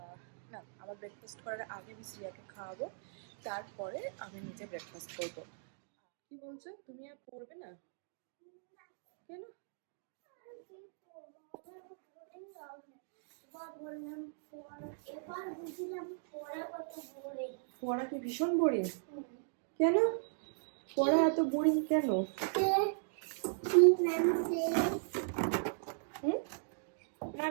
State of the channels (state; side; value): silent; left; digital silence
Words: না, আমার ব্রেকফাস্ট করার আগে আমি শ্রিয়াকে খাওয়াবো, তারপরে আমি নিজে ব্রেকফাস্ট করব। কি বলছো, তুমি আর পড়বে না কেন? পড়া কি ভীষণ বোরিং? কেন পড়া এত বোরিং কেন?